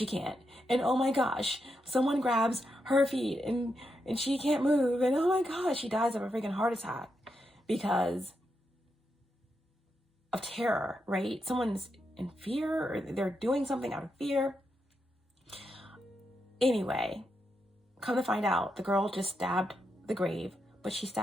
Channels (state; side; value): normal; both; correlation 0.84